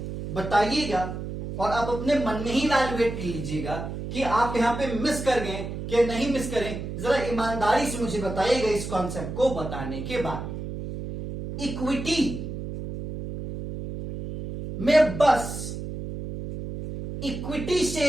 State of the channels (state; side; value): noise; right; hum, 7 dB below the sound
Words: बताइएगा, और आप अपने मन में ही इवैल्यूएट कर लीजिएगा कि आप यहां पे मिस कर गए या नहीं मिस करें। जरा ईमानदारी से मुझे बताइएगा इस कॉन्सेप्ट को बताने के बाद। इक्विटी में बस इक्विटी